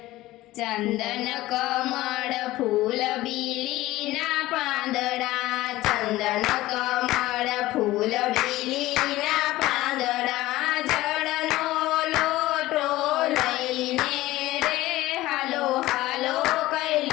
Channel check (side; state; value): right; quieter; 17.1 dB